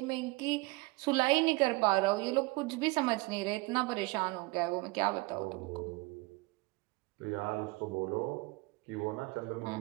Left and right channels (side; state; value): left; quieter; 24.3 dB